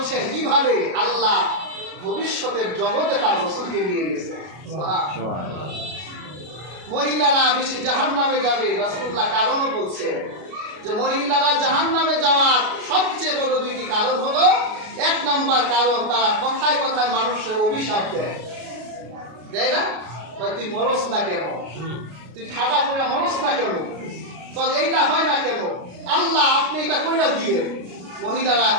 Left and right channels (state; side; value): late; left; 33 ms